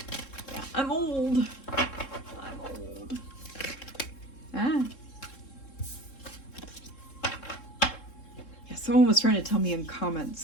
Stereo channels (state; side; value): late; right; 3.7 ms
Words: Yeah, I'm old. Yeah, someone was trying to tell me in comments,